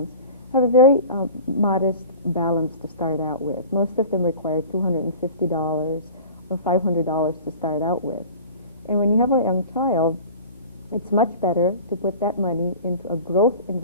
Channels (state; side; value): inverted; both; correlation -0.39